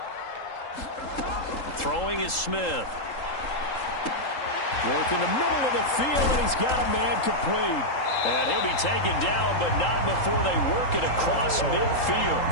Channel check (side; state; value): right; late; 3.8 ms